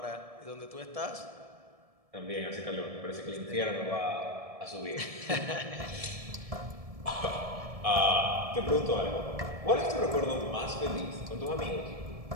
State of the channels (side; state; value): left; late; 1.7 ms